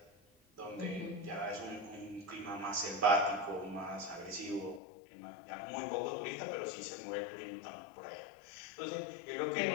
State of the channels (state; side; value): drops out; right; at 4.8 s